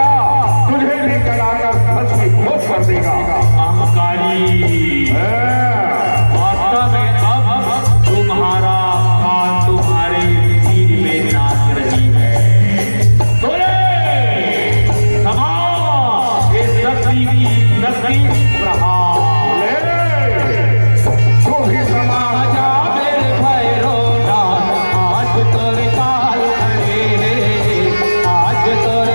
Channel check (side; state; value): both; inverted; correlation -1.00